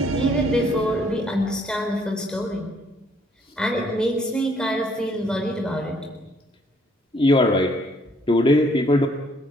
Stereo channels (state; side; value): normal; both; correlation 0.65